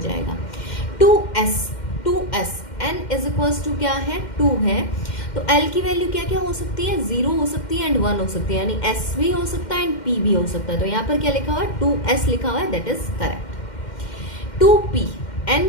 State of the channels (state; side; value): late; right; 2.1 ms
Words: 2s n is equals to क्या है, 2 है, तो l की वैल्यू क्या क्या हो सकती है, 0 हो सकती है एंड 1 हो सकती है, यानी s भी हो सकता है एंड p भी हो सकता है। तो यहाँ पर क्या लिखा हुआ है, 2s लिखा हुआ है, that is correct. 2p